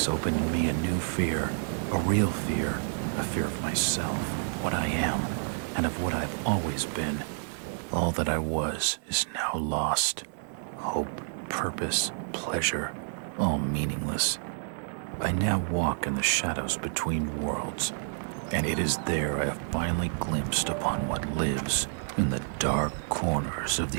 opened in me a new fear, a real fear, a fear of myself, what I am, and of what I've always been. All that I was is now lost. Hope, purpose, pleasure, all meaningless. I now walk in the shadows between worlds, and it is there I have finally glimpsed upon what lives in the dark corners of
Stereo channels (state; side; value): silent; left; digital silence